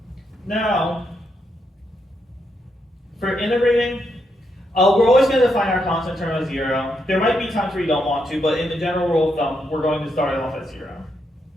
Now, for integrating, we're always going to define our constant term as 0. There might be times where you don't want to, but in the general rule of thumb, we're going to start it off at 0.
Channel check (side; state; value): both; normal; correlation 0.80